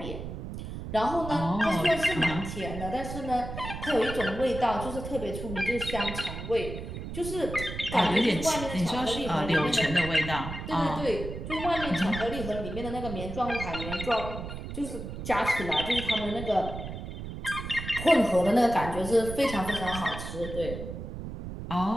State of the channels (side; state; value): right; noise; rumble, 8 dB below the sound